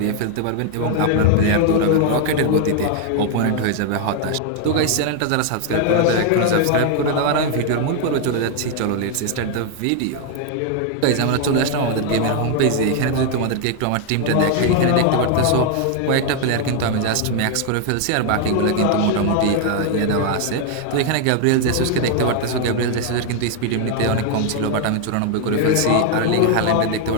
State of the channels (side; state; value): both; different; correlation 0.00